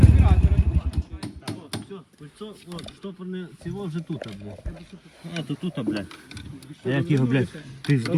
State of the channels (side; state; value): both; identical; correlation 1.00